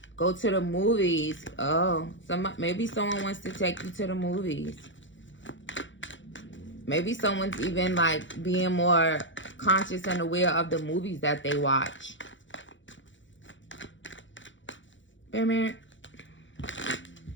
go to the movies. Oh, maybe someone wants to take you to the movies. Maybe someone's even, like, being more conscious and aware of the movies that they watch. There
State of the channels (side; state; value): right; late; 0.55 ms